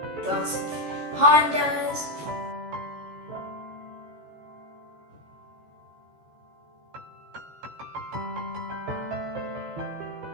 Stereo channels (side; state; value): left; late; 14 ms